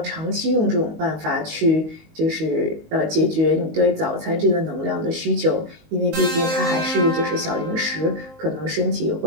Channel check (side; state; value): left; late; 19 ms